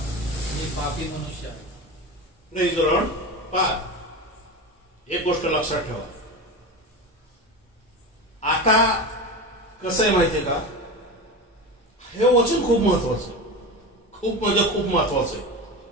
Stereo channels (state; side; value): normal; both; correlation 0.25